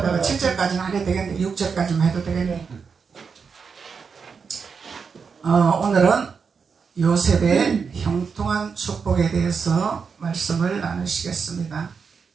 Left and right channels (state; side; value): quieter; left; 5.8 dB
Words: 7절까지는 안 해도 되겠네. 6절까지만 해도 되겠네. 오늘은 요셉의 형통한 축복에 대해서 말씀을 나누시겠습니다.